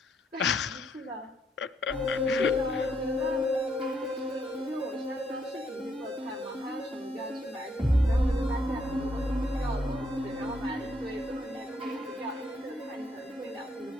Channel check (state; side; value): normal; both; correlation 0.73